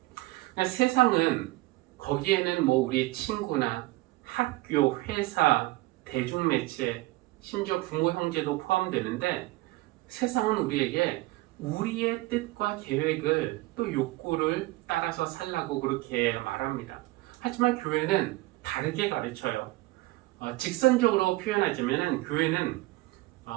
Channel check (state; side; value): quieter; left; 20.1 dB